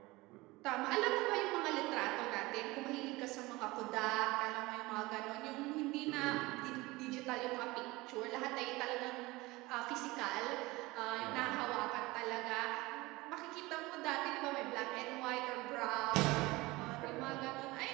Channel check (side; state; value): left; quieter; 21.3 dB